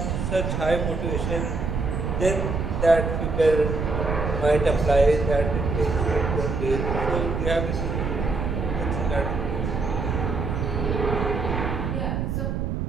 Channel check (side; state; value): right; noise; rumble, 1 dB below the sound